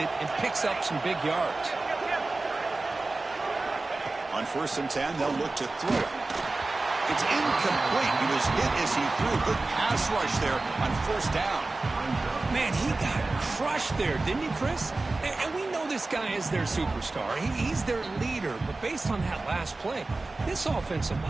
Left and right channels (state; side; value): quieter; left; 3.3 dB